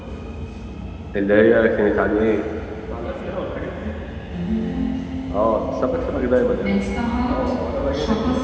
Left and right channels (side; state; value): both; identical; correlation 1.00